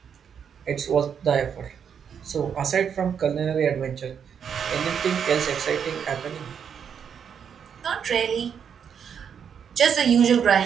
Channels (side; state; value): left; quieter; 7.6 dB